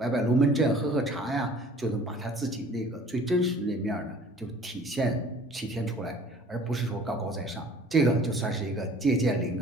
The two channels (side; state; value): both; normal; correlation 0.50